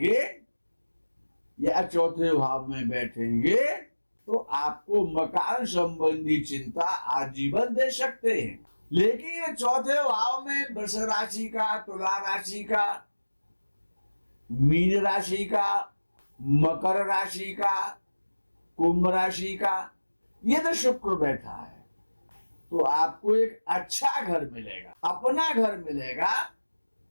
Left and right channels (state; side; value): inverted; both; correlation -1.00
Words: या चौथे भाव में बैठेंगे तो आपको मकान संबंधी चिंता आजीवन दे सकते हैं। लेकिन चौथे भाव में वृष राशि का, तुला राशि का, मीन राशि का, मकर राशि का, कुंभ राशि का यदि शुक्र बैठा है तो आपको एक अच्छा घर मिलेगा, अपना घर मिलेगा,